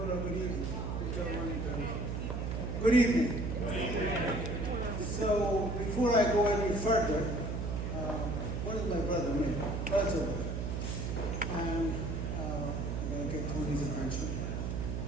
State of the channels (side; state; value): right; noise; hum, 2 dB below the sound